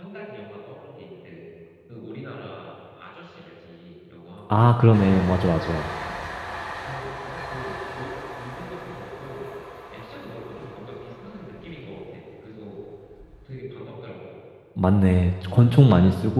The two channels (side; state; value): both; identical; correlation 1.00